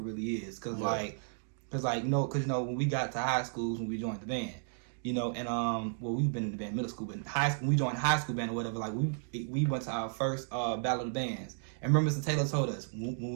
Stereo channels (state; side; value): silent; left; digital silence